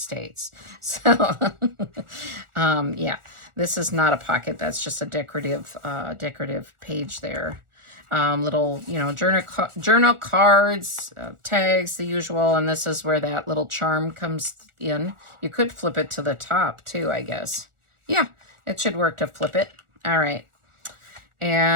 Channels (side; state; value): left; late; 1.4 ms